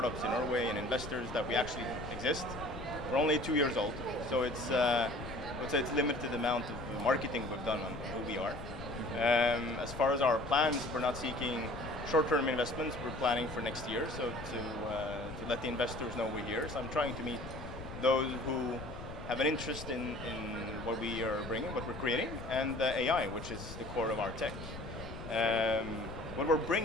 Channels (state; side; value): noise; left; rumble, 10 dB below the sound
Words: in Norway and investors that we actually exist. We're only 2 years old, so I would say it's limited amount of marketing we've done on who we are. As far as our plans, we're not seeking short-term investments. We're planning for next year, so to let the investors know we're here. So I'm trying to meet those who have an interest in what we are bringing, what we're creating, and AI, which is the core of our tech. What we're